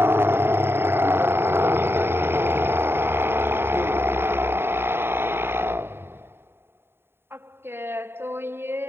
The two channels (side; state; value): left; late; 0.11 ms